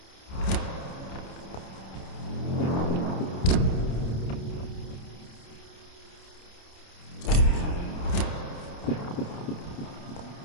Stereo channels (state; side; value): late; right; 29 ms